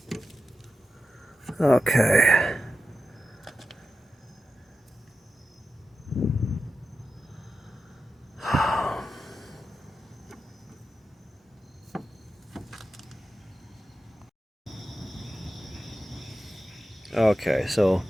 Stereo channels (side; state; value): both; normal; correlation 0.91